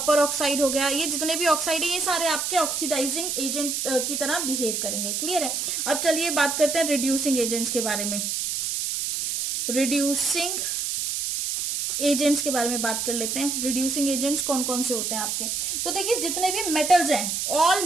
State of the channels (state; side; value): noise; right; hiss, 1 dB below the sound